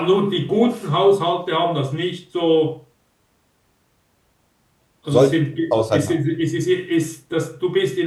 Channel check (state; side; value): identical; both; correlation 1.00